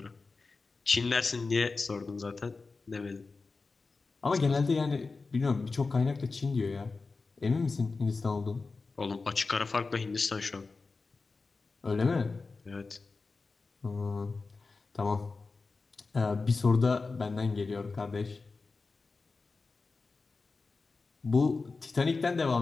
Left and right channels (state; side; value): quieter; right; 4.1 dB